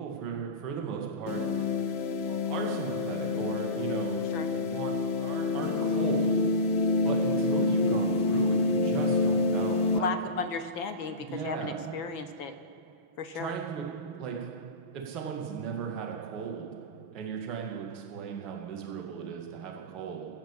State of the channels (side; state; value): right; late; 6.0 ms